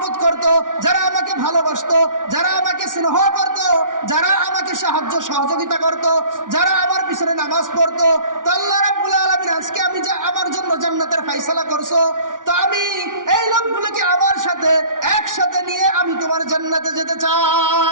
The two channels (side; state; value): left; late; 0.88 ms